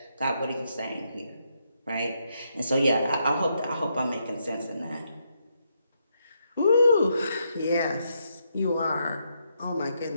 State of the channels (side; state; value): both; inverted; correlation -0.79